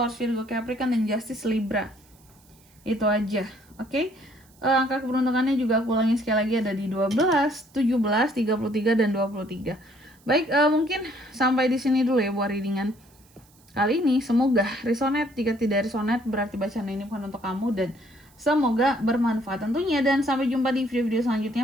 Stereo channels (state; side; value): noise; right; hiss, 30 dB below the sound